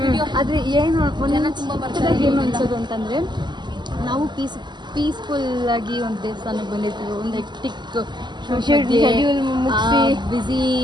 ಆದರೆ ಏನು ಅನ್ಸೋದು ಅಂತಂದರೆ ನಾವು ಪೀಸ್ಫುಲ್ ಆಗಿ ಒಂದು ದೇವಸ್ಥಾನಕ್ಕೆ ಬಂದಿರ್ತೀವಿ. ಒಂದು ಹೆಕ್ಟಿಕ್ ಶೆಡ್ಯೂಲ್ ಮುಗಿಸಿ ಬಿಸಿ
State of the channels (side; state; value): left; late; 0.21 ms